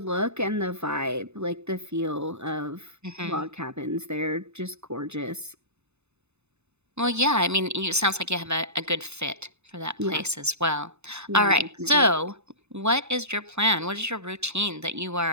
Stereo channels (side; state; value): left; late; 0.81 ms